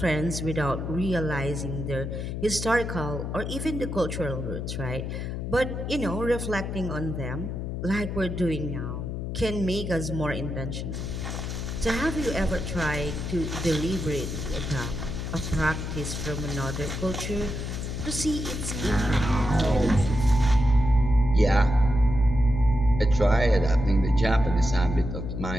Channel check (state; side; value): noise; left; hum, 4 dB below the sound